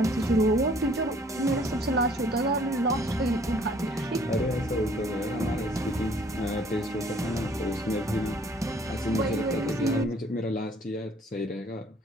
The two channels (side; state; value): both; normal; correlation 0.58